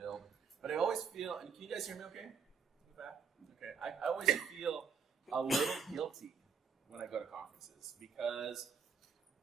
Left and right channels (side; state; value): left; quieter; 6.3 dB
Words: But I always feel, and can you guys hear me okay? In the back? Okay. I always feel a little guilty when I go to conferences because